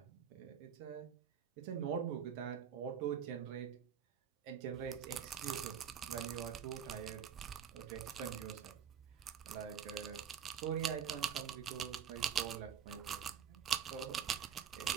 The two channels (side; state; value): left; quieter; 8.2 dB